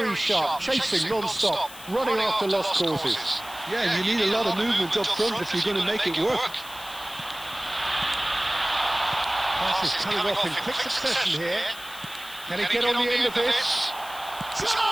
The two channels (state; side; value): noise; left; hiss, 16 dB below the sound